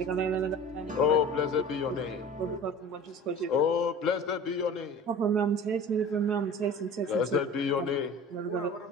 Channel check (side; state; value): both; normal; correlation 0.39